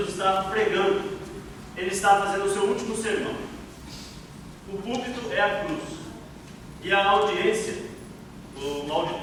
está pregando, ele está fazendo o seu último sermão. O púlpito é a cruz, e a audiência, o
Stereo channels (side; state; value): both; identical; correlation 1.00